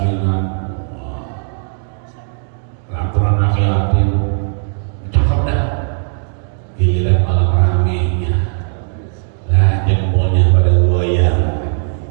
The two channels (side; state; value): left; silent; digital silence